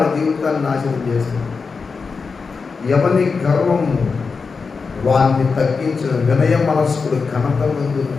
జీవితాన్ని నాశనం చేస్తుంది. ఎవరి గర్వము వారిని తగ్గించిన వినయ మనస్కుడు ఘనత ముందు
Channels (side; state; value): right; quieter; 4.9 dB